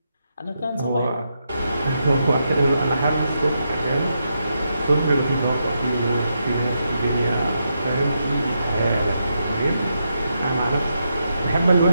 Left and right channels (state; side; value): inverted; both; correlation -0.83